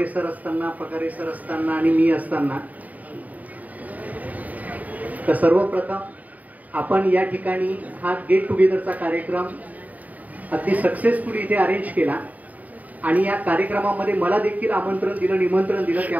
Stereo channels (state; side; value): late; left; 0.075 ms